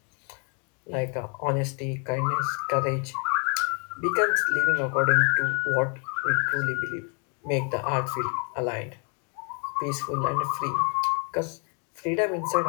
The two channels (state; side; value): quieter; right; 37.2 dB